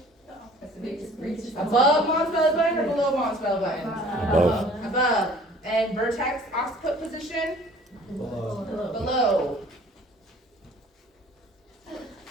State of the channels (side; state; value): both; normal; correlation 0.51